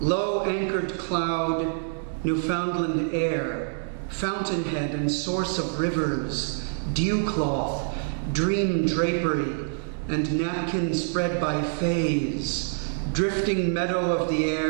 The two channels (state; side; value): silent; left; digital silence